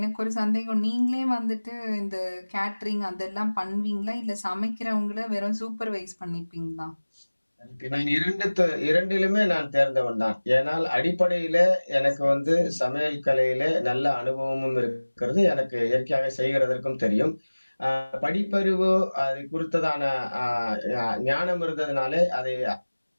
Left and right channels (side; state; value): both; inverted; correlation -1.00